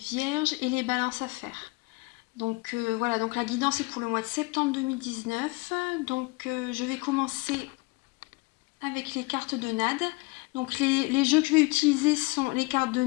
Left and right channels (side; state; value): right; quieter; 25.8 dB